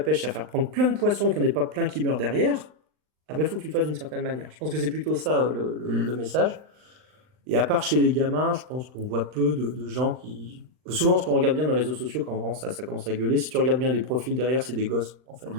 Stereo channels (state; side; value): late; left; 39 ms